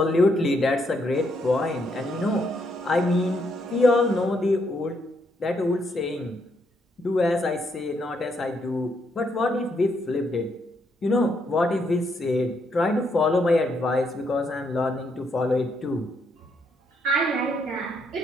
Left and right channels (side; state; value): both; normal; correlation 0.75